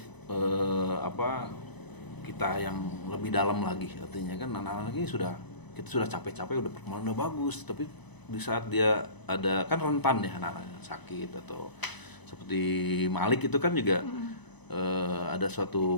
kita yang lebih dalam lagi, artinya kan anak-anak ini kita sudah capek-capek, udah perkembangan udah bagus, tapi di saat dia ada kan rentan ya anak-anak sakit atau seperti Malik itu kan juga ada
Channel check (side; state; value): right; late; 0.99 ms